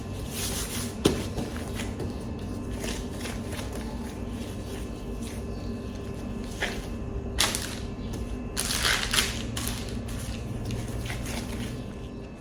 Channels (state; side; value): identical; both; correlation 1.00